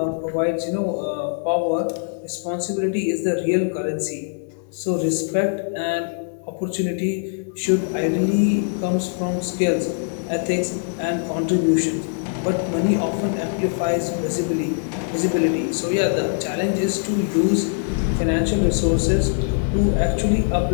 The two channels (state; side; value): silent; right; digital silence